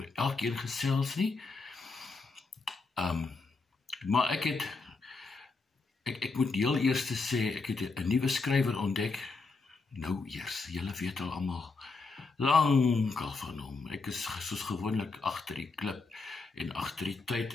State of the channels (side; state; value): right; quieter; 4.0 dB